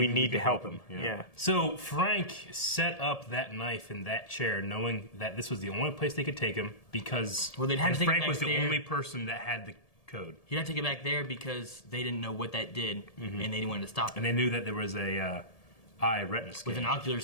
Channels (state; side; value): late; right; 1.7 ms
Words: to can help him. You know? Yeah. So Frank set up that knife in that chair, knowing that this was the only place they could take him because they'd have to take it Frank back was the there. only person that had the code. He'd have to get back there because they didn't know what that did, and they didn't want to stop it. And they knew that there was a eye retina scan. With an ocular